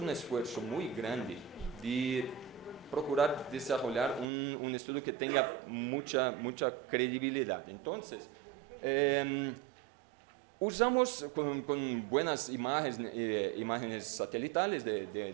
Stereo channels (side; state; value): left; drops out; at 4.2 s